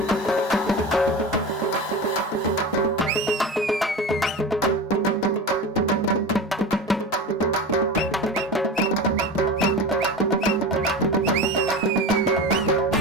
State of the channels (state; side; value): normal; both; correlation 0.28